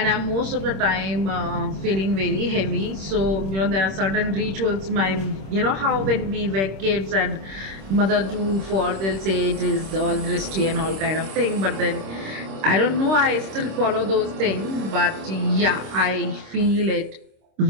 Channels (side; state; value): left; late; 26 ms